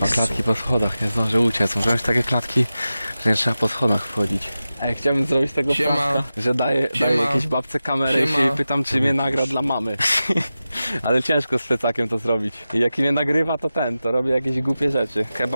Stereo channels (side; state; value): both; inverted; correlation -0.94